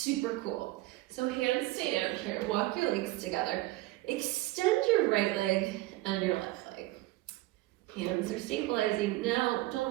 cool. So hands stay down here, walk your legs together. Extend your right leg and your left leg. Hands are stabilizing. Now,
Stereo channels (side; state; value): left; quieter; 18.7 dB